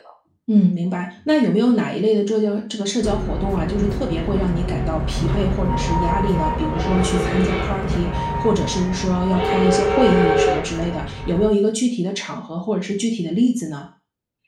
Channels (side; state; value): both; identical; correlation 1.00